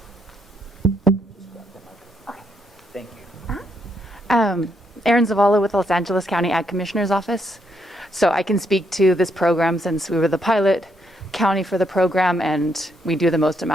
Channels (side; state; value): both; normal; correlation 0.76